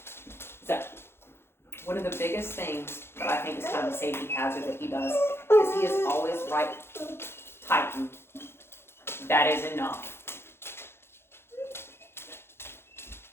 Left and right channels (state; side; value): late; right; 0.12 ms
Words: So, one of the biggest things that I think is kind of a safety hazard that he does is he is always right tightened. That is enough.